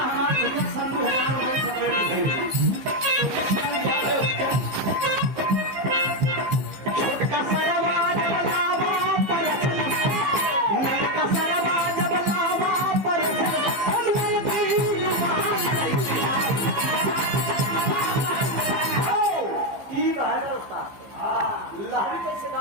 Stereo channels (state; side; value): late; left; 15 ms